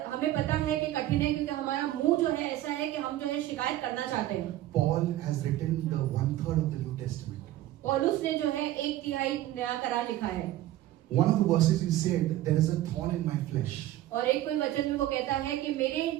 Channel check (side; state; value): left; quieter; 14.4 dB